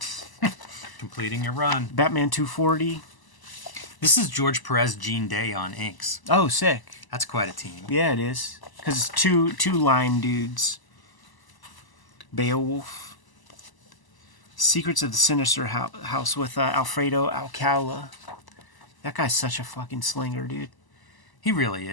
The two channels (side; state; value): right; late; 1.0 ms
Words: Completing your run. Batman 240. This is George Perez, Gene Day on inks. Oh, sick. That's quite a team. Yeah, it is. Because it's two line dudes. Beowulf. Secrets of the Sinister House with Alfredo Alcala. That guy's such a fucking slinger, dude. He really